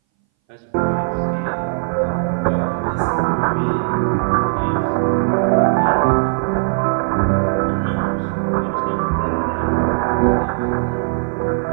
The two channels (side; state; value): left; silent; 61 dB below the other